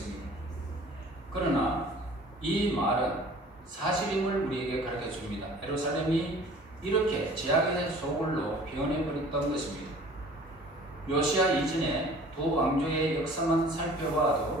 그러나 이 말은 사실임을 우리에게 가르쳐 줍니다. 예루살렘이 이렇게 제약의 소굴로 변해버렸던 것입니다. 요시야 이전에 두 왕조의 역사만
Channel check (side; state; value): both; normal; correlation 0.48